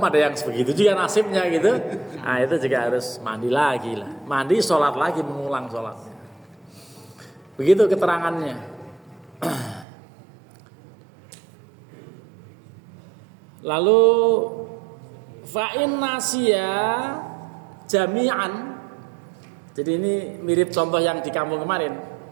ada yang begitu juga nasibnya gitu. Nah itu juga harus mandi lagi lah. Mandi sholat lagi, mengulang sholatnya. Begitu keterangannya. Lalu fa'in nasya jami'an. Jadi ini mirip contoh yang di kampung kemarin.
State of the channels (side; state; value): left; drops out; at 9.9 s